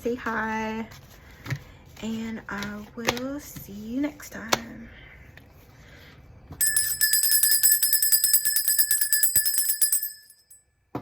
hi, and I will see you next time.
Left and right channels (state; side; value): identical; both; correlation 1.00